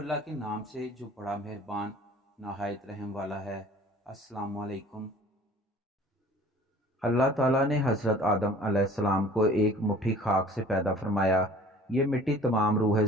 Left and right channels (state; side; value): normal; both; correlation 0.49